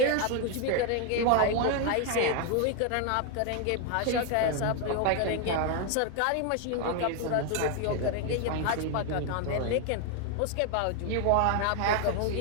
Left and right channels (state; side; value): different; both; correlation 0.01